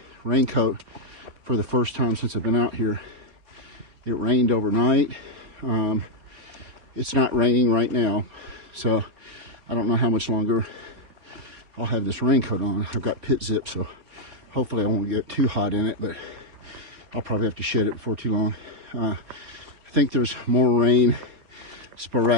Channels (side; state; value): left; late; 4.3 ms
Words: raincoat for the first time since I've been out here. It rained overnight. It's not raining right now, so I don't know how much longer I'll have this raincoat on. I've got pit zip, so hopefully I won't get too hot in it, but I'll probably have to shed it before too long. I think there's more rain